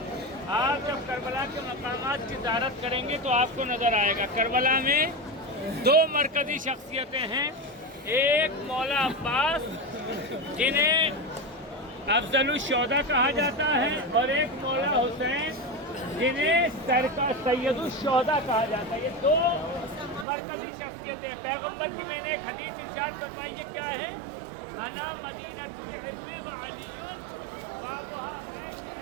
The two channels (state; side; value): drops out; left; at 20.2 s